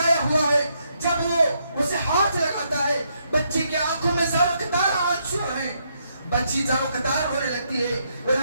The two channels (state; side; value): inverted; both; correlation -0.76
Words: ہوا ہے، جب وہ اسے ہاتھ لگاتا ہے، بچی کی آنکھوں میں میں زاروں قطار آنسو ہے، بچی زاروں قطار ہونے لگتی ہے، وہ